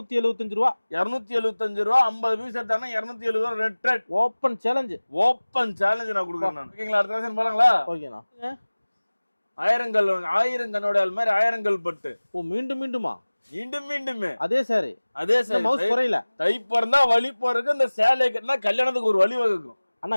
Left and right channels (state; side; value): inverted; both; correlation -1.00